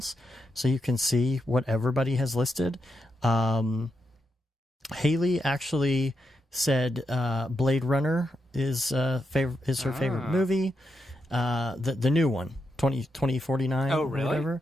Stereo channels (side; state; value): both; normal; correlation 0.84